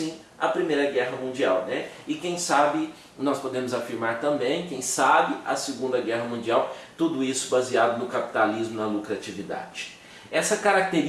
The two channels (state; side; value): identical; both; correlation 1.00